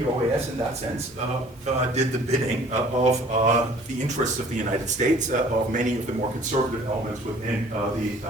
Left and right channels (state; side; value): normal; both; correlation 0.52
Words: OAS, in that sense, did the bidding of the interests of the United States, of many of the more conservative elements within